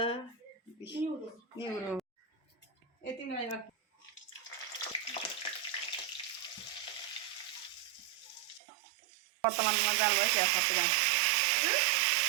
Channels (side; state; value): left; drops out; at 8.6 s